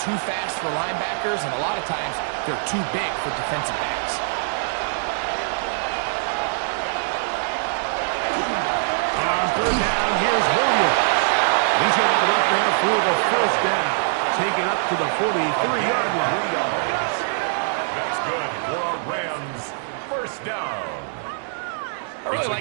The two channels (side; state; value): left; silent; 63 dB below the other